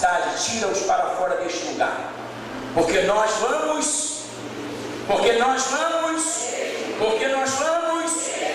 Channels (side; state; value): both; identical; correlation 1.00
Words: tira-os para fora deste lugar, porque nós vamos